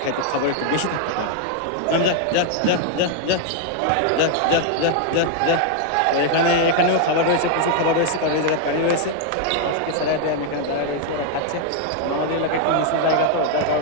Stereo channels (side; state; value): both; different; correlation 0.00